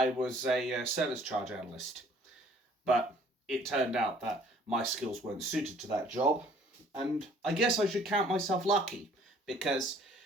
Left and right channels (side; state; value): both; normal; correlation 0.57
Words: was a service charge analyst, but it turned out that my skills weren't suited to that job. And I guess I should count myself lucky, because